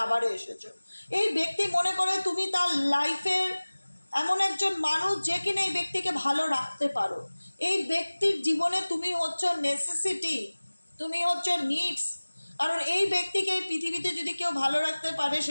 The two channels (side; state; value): both; inverted; correlation -1.00